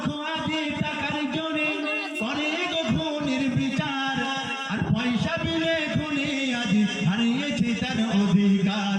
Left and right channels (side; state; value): both; identical; correlation 1.00